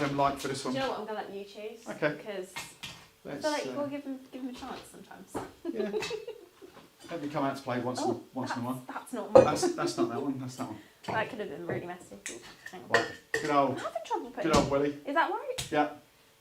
like for this Do one? you know what? I'm going to let you choose. Okay. Because I Let's, feel like you've got to give them a chance sometimes. yeah. Let me come out to play once in a while. That's not mine. That's not that one. That's that one. That could have been really messy. Hang on. Right. Good old. I'm having trouble putting. Good old Willie. Is that right? Yeah.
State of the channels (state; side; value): identical; both; correlation 1.00